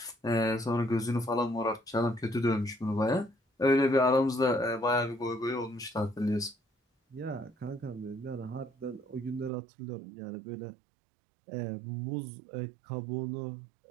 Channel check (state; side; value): drops out; left; at 9.5 s